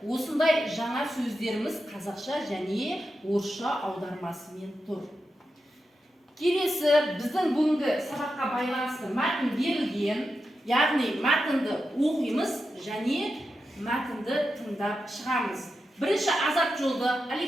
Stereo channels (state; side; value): normal; both; correlation 0.89